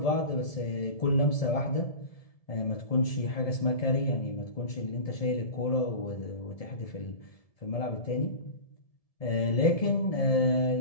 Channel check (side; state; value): right; late; 1.7 ms